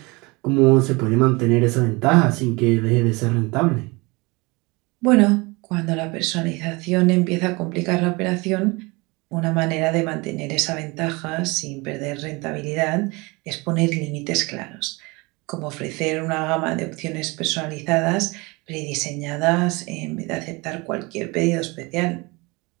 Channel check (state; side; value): quieter; left; 25.6 dB